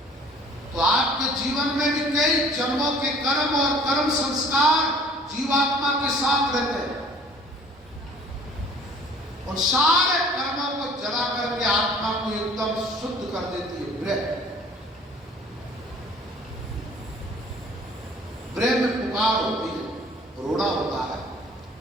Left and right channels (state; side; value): normal; both; correlation 0.52